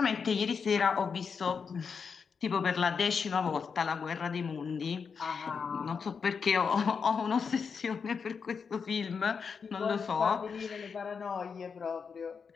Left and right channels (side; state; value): right; quieter; 5.9 dB